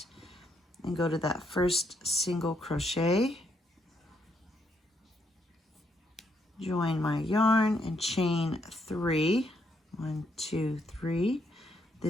and go to that first single crochet, join my yarn and chain 3. 1, 2, 3.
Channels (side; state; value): both; normal; correlation 0.75